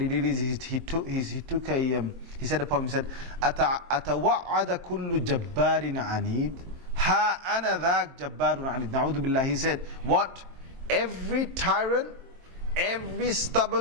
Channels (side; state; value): left; late; 23 ms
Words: he did is he said a poem. He said, أَتَوَعَّدَ كُلُّ جَبَّارٍ عَنِيدٍ هَا أَنَا ذَاكَ جَبَّارٌ عَنِيدٍ. Na'udhu billah. He said, what? Every tyrant, every